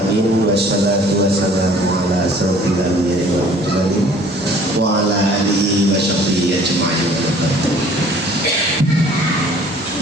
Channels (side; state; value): both; normal; correlation 0.53